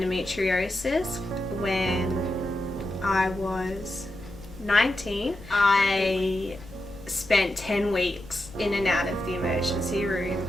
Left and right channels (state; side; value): noise; left; rumble, 18 dB below the sound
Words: when I was 19. I spent 10 weeks in and out of the emergency room.